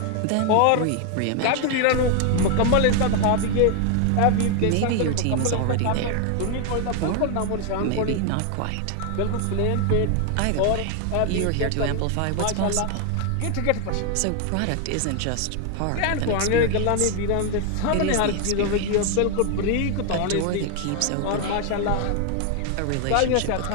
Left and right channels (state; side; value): different; both; correlation 0.00